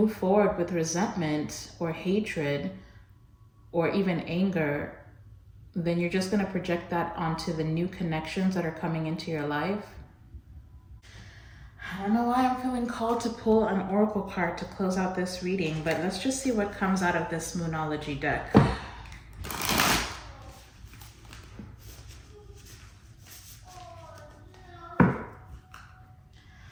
forward with resentment or hatred or even anger, then you're just going to project that onto the new connections that are coming into your life. I don't know why I'm feeling called to pull an oracle card to close out this reading, but let's just see what comes out of this Moonology deck.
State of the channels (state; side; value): identical; both; correlation 1.00